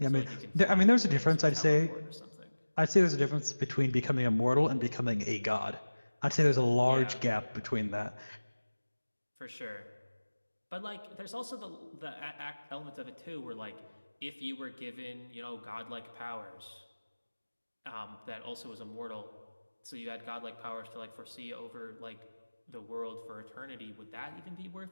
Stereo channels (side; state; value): both; inverted; correlation -1.00